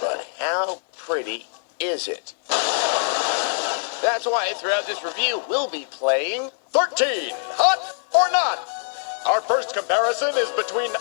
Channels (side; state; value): right; silent; 63 dB below the other